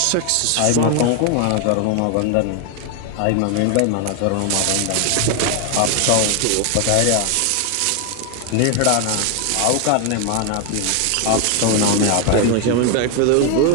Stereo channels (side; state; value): both; different; correlation 0.01